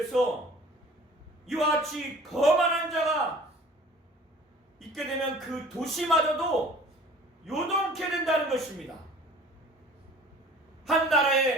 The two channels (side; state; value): both; normal; correlation 0.46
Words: 이와 같이 거만한 자가 있게 되면 그 도시마저도 요동케 된다는 것입니다. 한